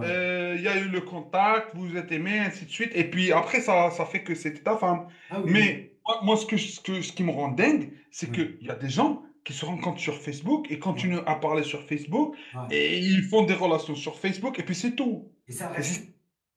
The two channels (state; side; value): identical; both; correlation 1.00